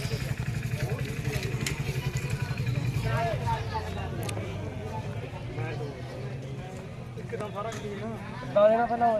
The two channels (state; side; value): identical; both; correlation 1.00